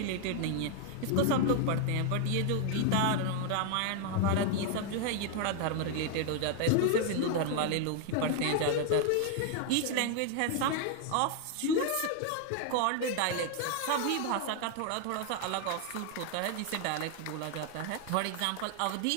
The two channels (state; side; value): different; both; correlation 0.00